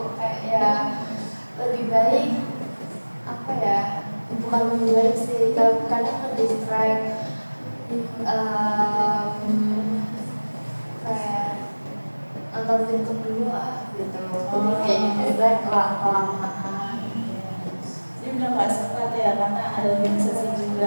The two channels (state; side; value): inverted; both; correlation -1.00